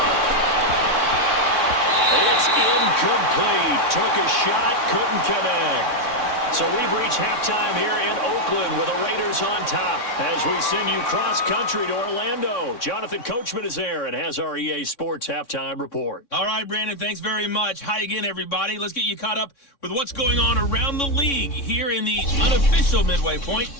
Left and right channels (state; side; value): late; right; 3.6 ms